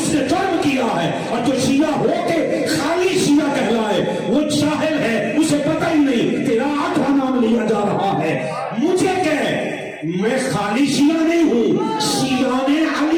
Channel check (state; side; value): identical; both; correlation 1.00